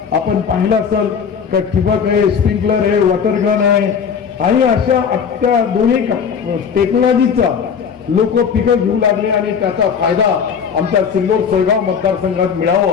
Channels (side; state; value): right; quieter; 6.8 dB